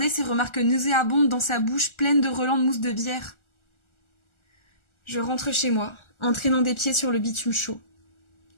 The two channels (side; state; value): right; late; 1.4 ms